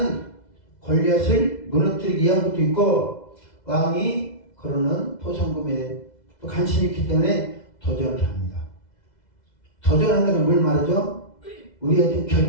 골리앗을 무너뜨리기 위한 것도 있고 왕이 그러는 포상금에 또 관심이 있기 때문에 도전을 합니다. 도전한다는 건 뭘 말하죠? 우리한테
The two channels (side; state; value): right; late; 2.0 ms